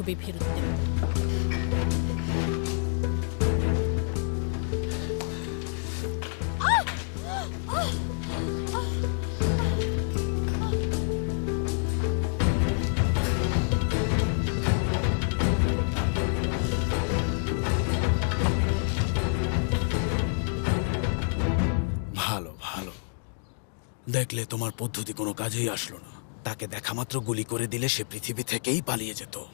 ফেরত দেব। ভালো ভালো, দেখলে তোমার পদ্ধতি কোনো কাজেই আসলো না। তাকে দেখা মাত্র গুলি করে দিলে সে পৃথিবী থেকেই পালিয়ে যেত।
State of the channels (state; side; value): silent; right; 59 dB below the other